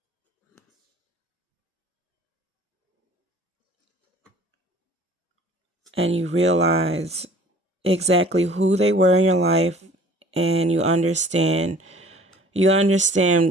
And you realize exactly who they were in your life, and you understand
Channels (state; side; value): normal; both; correlation 0.50